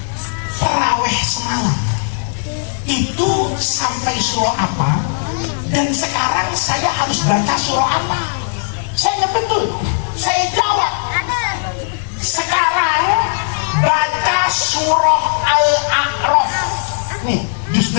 taraweh semalam itu sampai surah apa? Dan sekarang saya harus baca surah apa? Saya ingat betul. Saya jawab, sekarang baca surah Al-A'raf. Nih, juz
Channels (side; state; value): right; silent; digital silence